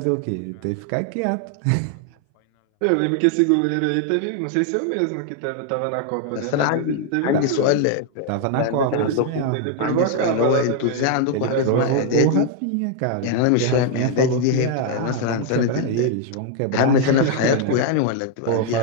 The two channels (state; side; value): different; both; correlation 0.00